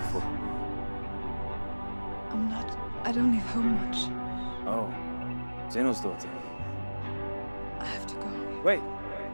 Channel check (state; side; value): inverted; both; correlation -1.00